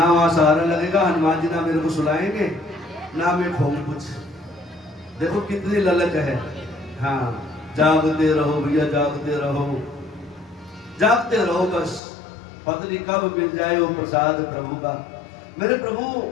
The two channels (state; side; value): drops out; right; at 12.0 s